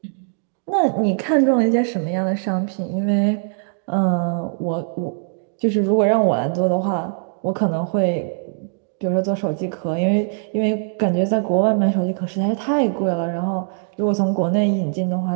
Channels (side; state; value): left; silent; 65 dB below the other